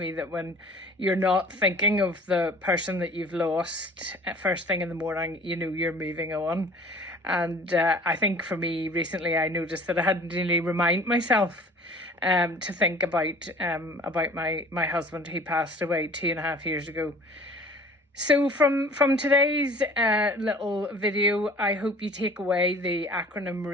that when you're not thinking of the person that you've lost first thing in the morning, you know you're moving on. And I think for me recently, I noticed that I hadn't really remind myself to think about my husband who passed away 2.5 years ago. So from today's little video, I hope you take away the acronym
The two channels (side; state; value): both; normal; correlation 0.48